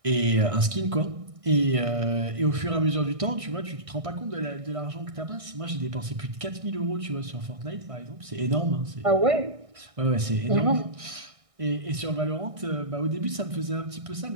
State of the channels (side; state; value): left; late; 1.6 ms